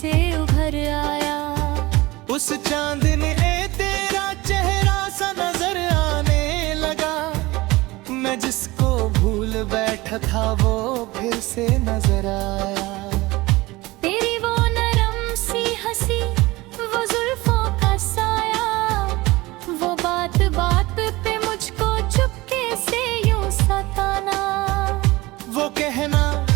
उभर आया। उस चांद ने तेरा चेहरा सा नजर आने लगा। मैं जिसको भूल बैठा था वो फिर से नजर आया। तेरी वो नरम सी हंसी, वो जुल्फों का साया, वो बात बात पे मुझको चुपके से यूं सताना। वो कहना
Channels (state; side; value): quieter; left; 20.6 dB